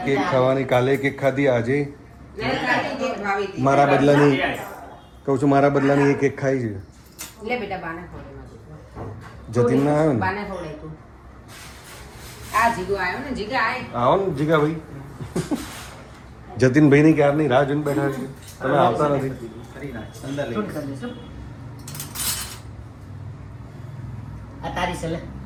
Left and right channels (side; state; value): both; identical; correlation 1.00